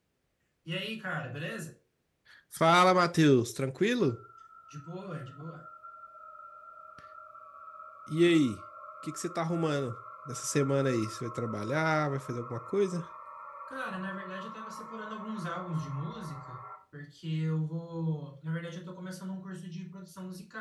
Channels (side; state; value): both; identical; correlation 1.00